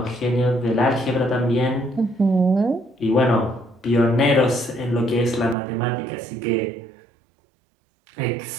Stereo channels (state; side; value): drops out; left; at 5.6 s